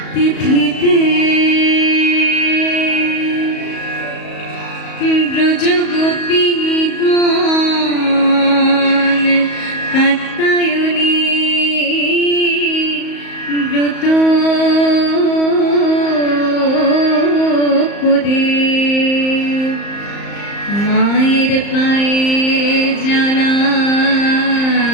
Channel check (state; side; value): late; right; 34 ms